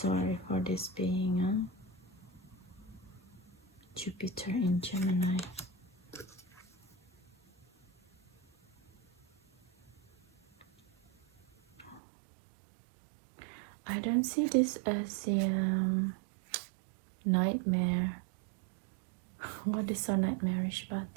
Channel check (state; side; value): drops out; left; at 12.0 s